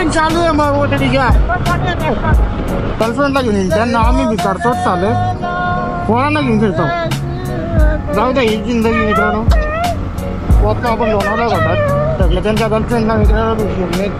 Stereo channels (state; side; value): identical; both; correlation 1.00